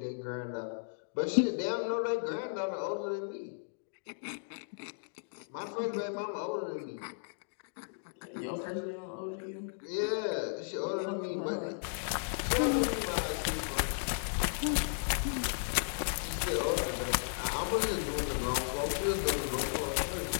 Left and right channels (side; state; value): right; silent; digital silence